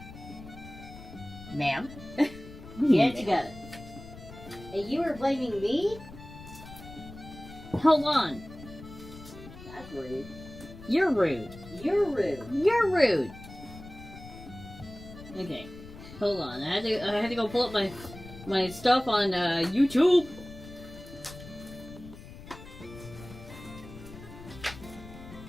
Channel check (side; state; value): left; noise; rumble, 16 dB below the sound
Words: Ma'am? Get it together. And you were blaming me? Hold on. That's rude. You're rude. You're rude. You're rude. Okay. Hold on. I had to go pull up my stuff on YouTube.